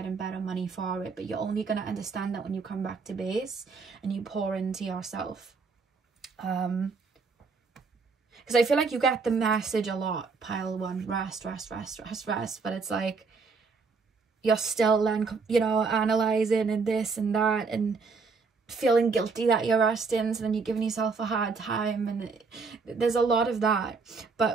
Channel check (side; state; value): left; quieter; 4.6 dB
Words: better money for it, but you're only going to understand that when you come back to base and you pour into yourself. Because I feel like you get the message a lot, pile one, rest, but it's like you're still then, you know, analysing and this and that and feeling guilty that you're resting, so then you're giving yourself a hard time, and there's a lot of that.